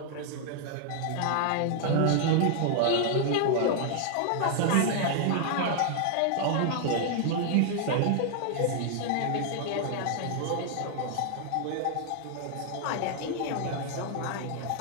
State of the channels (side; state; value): both; different; correlation 0.00